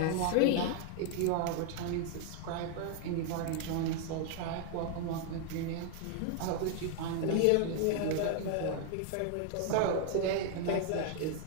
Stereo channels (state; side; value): different; both; correlation 0.00